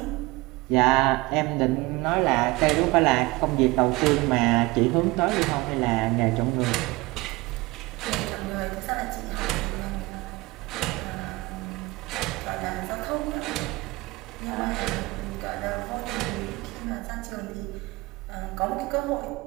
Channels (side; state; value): left; quieter; 22.2 dB